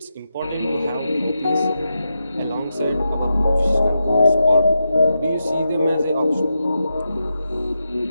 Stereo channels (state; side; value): inverted; both; correlation -0.87